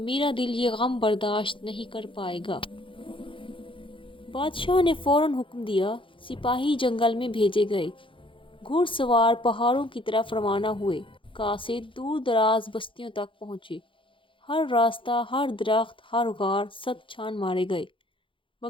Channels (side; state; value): right; late; 0.25 ms